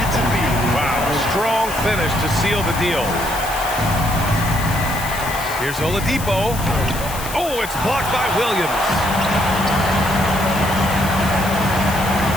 to be. Wow, strong finish to seal the deal. Here's Oladipo. Oh, it's blocked by Williams.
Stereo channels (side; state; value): left; noise; hiss, 10 dB below the sound